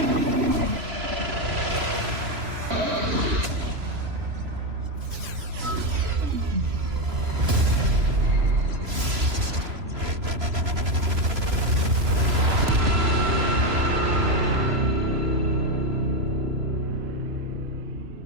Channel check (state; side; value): late; left; 3.0 ms